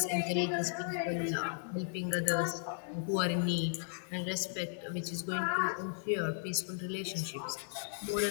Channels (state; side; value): silent; right; digital silence